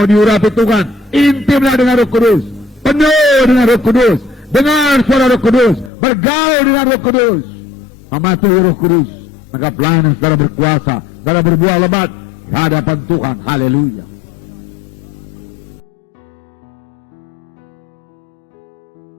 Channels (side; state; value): right; drops out; at 5.9 s